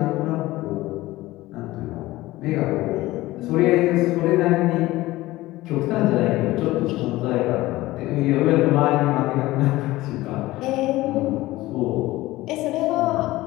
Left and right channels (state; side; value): quieter; right; 17.9 dB